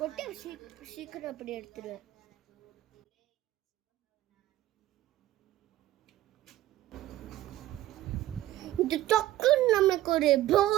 சீக்கிரம் அப்படி எடுத்துடுவேன். இது டக்குன்னு நமக்கு ஒரு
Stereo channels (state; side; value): quieter; left; 14.6 dB